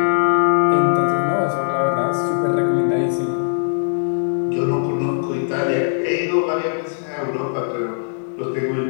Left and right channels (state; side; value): silent; right; digital silence